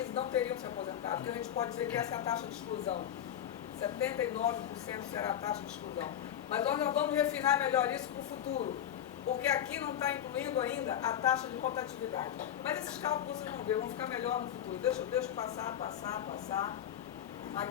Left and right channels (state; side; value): quieter; right; 10.3 dB